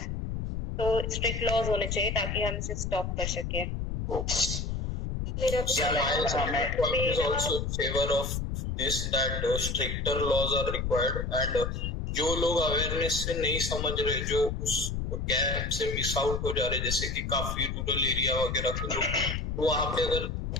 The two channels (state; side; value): noise; left; rumble, 3 dB below the sound